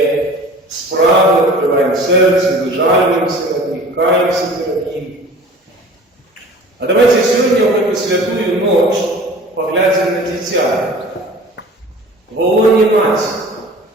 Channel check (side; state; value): both; normal; correlation 0.43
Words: справи, відкриваємо серце, вижалюємося над ним, каємося перед Ним. А давайте сьогодні в эту святую ночь поглянемо на дитя. В лоні Матері,